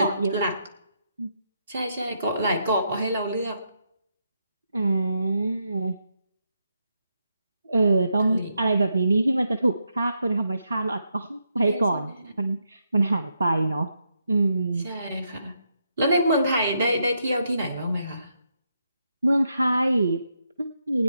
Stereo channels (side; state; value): both; inverted; correlation -0.81